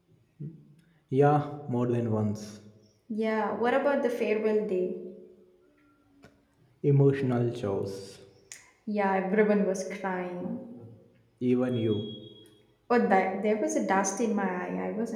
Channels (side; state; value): both; identical; correlation 1.00